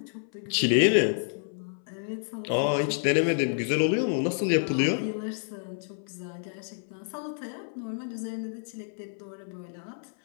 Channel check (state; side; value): silent; right; 59 dB below the other